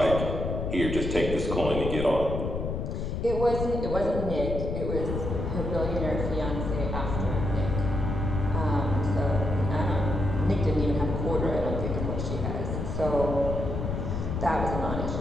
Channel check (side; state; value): left; noise; rumble, 3 dB below the sound